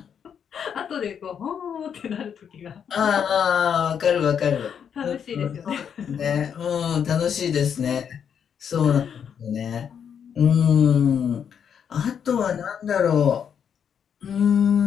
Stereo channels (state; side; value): quieter; right; 7.8 dB